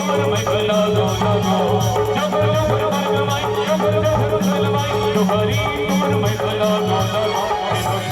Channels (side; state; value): both; identical; correlation 1.00